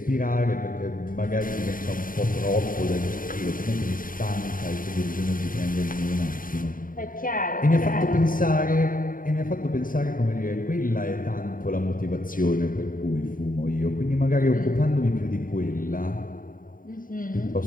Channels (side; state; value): right; late; 0.40 ms